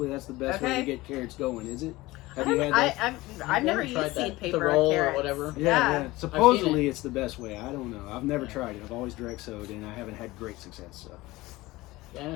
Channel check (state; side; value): quieter; right; 19.6 dB